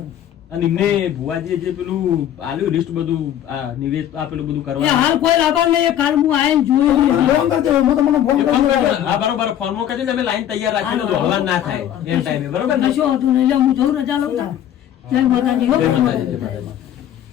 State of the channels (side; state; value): right; quieter; 10.9 dB